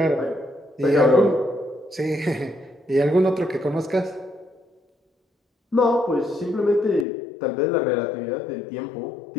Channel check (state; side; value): drops out; right; at 7.1 s